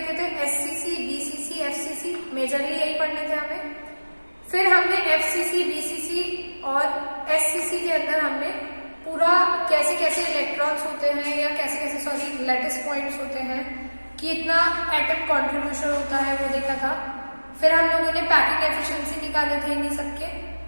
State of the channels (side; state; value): both; inverted; correlation -1.00